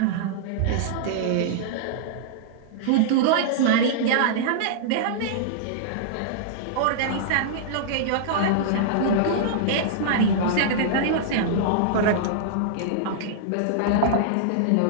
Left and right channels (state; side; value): different; both; correlation -0.02